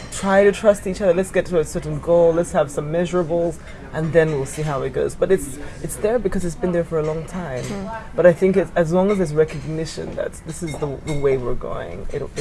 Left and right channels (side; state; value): both; identical; correlation 1.00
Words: try to trust each other, let's get to a certain goal, let's have some measurables, and then we'll see how it goes. But it's there because it's been there for a long time. But I think as long as there's recognition that this is the way we're going,